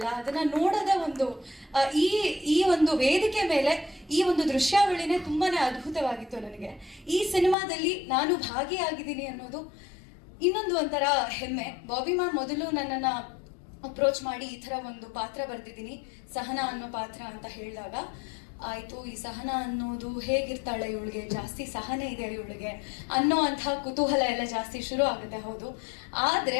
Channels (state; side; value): drops out; right; at 7.6 s